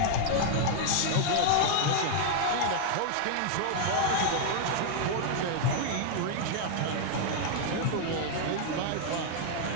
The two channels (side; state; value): both; different; correlation 0.00